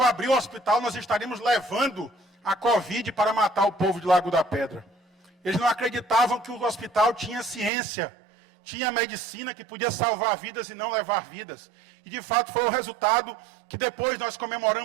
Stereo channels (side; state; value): left; drops out; at 7.7 s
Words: abrir o hospital nós estaríamos levando a Covid para matar o povo de Lago da Pedra. Eles não acreditavam que o hospital tinha ciência, tinha medicina que podia salvar vidas e não levar vidas. E de fato foi o resultado que depois nós